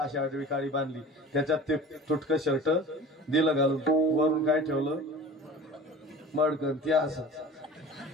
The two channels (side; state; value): both; normal; correlation 0.39